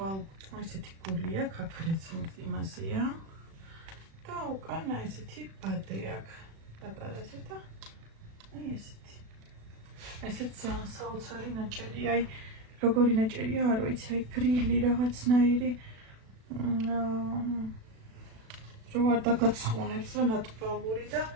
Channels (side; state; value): left; late; 36 ms